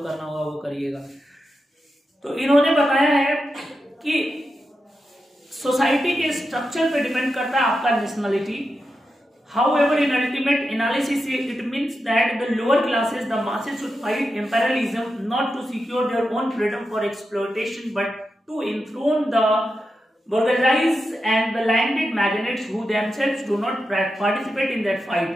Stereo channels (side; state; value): both; normal; correlation 0.88